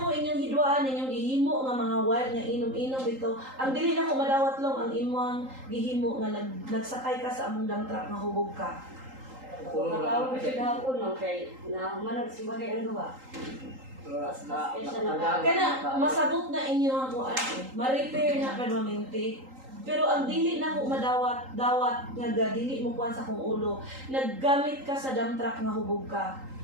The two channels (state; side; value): late; left; 3.8 ms